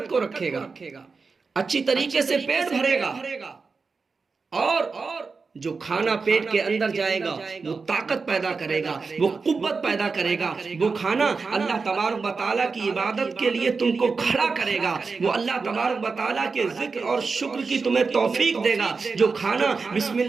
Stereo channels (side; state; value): left; quieter; 4.6 dB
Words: کو رکھے گا، اچھی طریقے سے پیٹ بھرے گا، اور جو کھانا پیٹ کے اندر جائے گا وہ طاقت پیدا کرے گا، وہ قوت پیدا کرے گا۔ وہ کھانا اللہ تبارک و تعالیٰ کی عبادت کے لیے تم کو کھڑا کرے گا، وہ اللہ تبارک و تعالیٰ کے ذکر اور شکر کی تمہیں توفیق دے گا۔ جو کھانا بسم